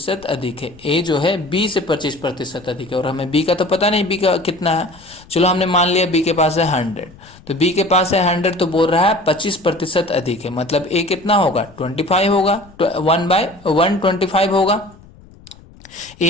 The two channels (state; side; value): noise; left; rumble, 24 dB below the sound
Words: अधिक है, ए जो है बी से 25% अधिक है, और हमें बी का तो पता नहीं बी का कितना है। चलो हमने मान लिया बी के पास है 100, तो बी के पास है 100 तो बोल रहा है 25% अधिक है, मतलब ए कितना होगा 25 होगा, 1/125 होगा।